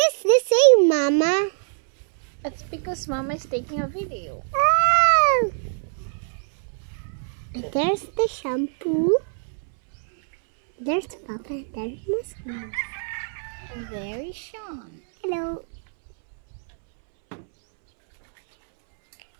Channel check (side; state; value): left; silent; 63 dB below the other